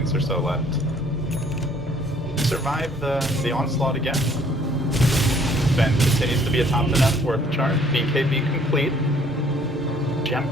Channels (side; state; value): both; normal; correlation 0.60